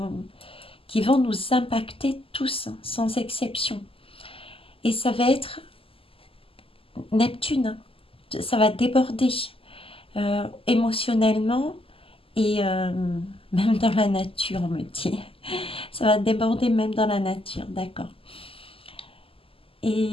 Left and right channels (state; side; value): late; right; 0.26 ms